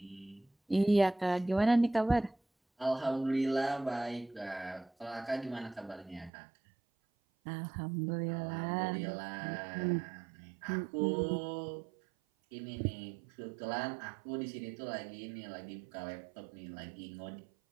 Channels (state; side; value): drops out; left; at 6.3 s